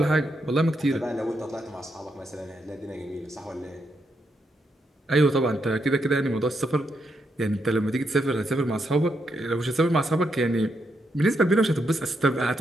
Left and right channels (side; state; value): both; normal; correlation 0.80